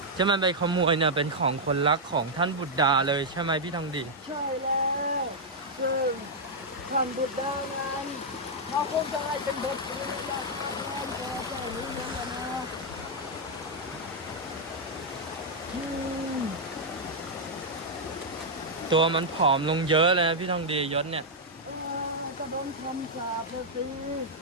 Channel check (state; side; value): normal; both; correlation -0.04